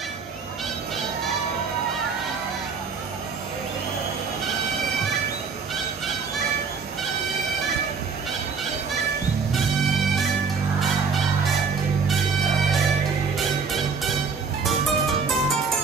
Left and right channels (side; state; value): left; quieter; 5.3 dB